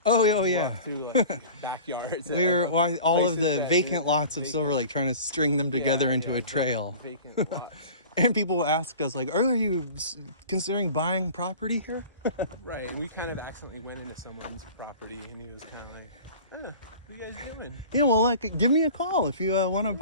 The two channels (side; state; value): both; inverted; correlation -0.40